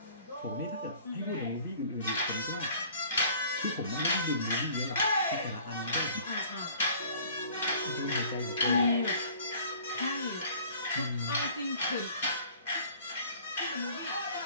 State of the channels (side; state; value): both; inverted; correlation -0.51